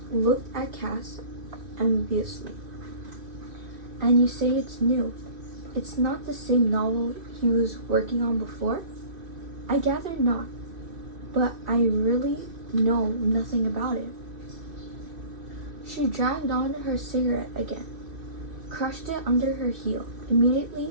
looked at Cass enviously. And you say it's new. It's not the same novel he was working on before? I gather not, but I really know nothing about it. She dragged on her cigarette again, crushed it under her heel, immediately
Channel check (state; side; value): late; left; 2.5 ms